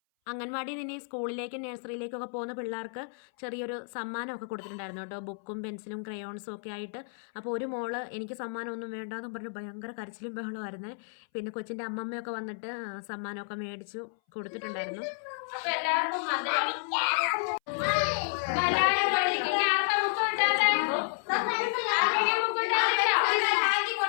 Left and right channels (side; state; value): right; silent; 57 dB below the other